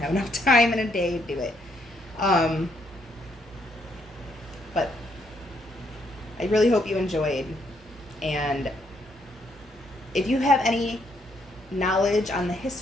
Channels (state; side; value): normal; both; correlation 0.73